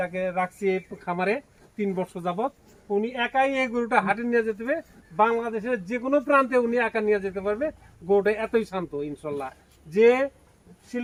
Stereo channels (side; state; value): both; identical; correlation 1.00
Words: রাখছি এই খামারে 3 বছর যাবত, উনি একাই এই গরুটা হাটে নিয়ে যেতে হবে। বাংলাদেশের যে কোনো প্রান্তে উনি একা নিয়ে যেতে পারবে। গরুটা এতই শান্ত। ইনশাল্লাহ যে